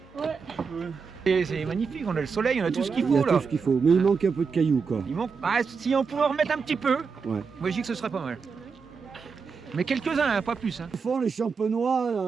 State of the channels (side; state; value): left; quieter; 5.4 dB